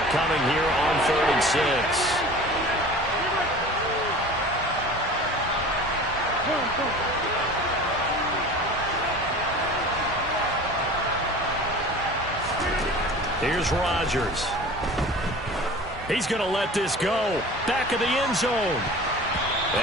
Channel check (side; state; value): both; normal; correlation 0.40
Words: here on 3rd and 6. Here's Rodgers. He's going to let this go. Back of the end zone.